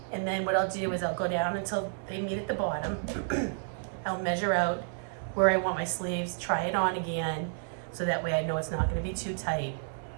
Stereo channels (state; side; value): silent; left; 57 dB below the other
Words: And then what I'll do is I'll go down until they meet at the bottom. I'll measure out where I want my sleeves, try it on again, so that way I know it's not gonna be too tight.